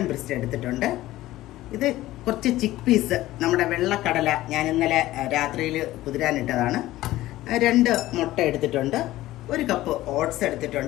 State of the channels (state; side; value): quieter; right; 16.1 dB